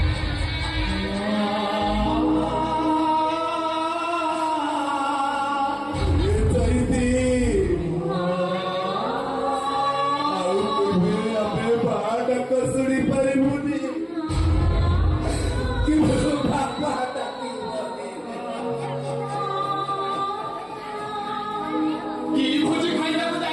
ଶୁଣି ପାରିବୁନି କି ବାପା କି ଭୋଜି ଖାଇବାକୁ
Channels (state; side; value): identical; both; correlation 1.00